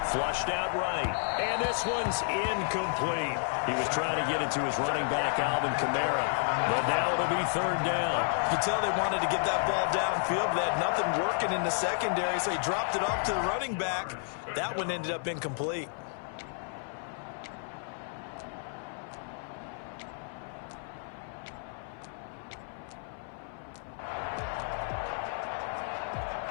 flushed out right. And this one's incomplete. He was trying to get it to his running back, Alvin Kamara. But now it'll be 3rd down. You can tell they wanted to get that ball downfield, but they had nothing working in the secondary, so he dropped it off to the running back. That one ended up incomplete.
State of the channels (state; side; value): silent; right; 57 dB below the other